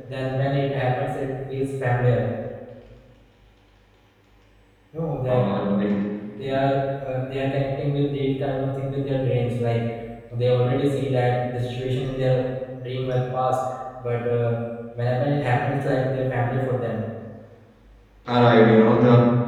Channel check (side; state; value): both; identical; correlation 1.00